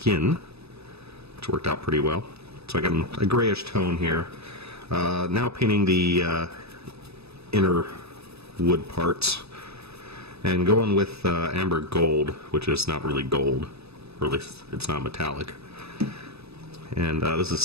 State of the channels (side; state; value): left; late; 0.79 ms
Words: which worked out pretty well. So I got a grayish tone here. Now painting the inner wood parts, and going with amber gold, which is not really gold, or at least it's not metallic. And this is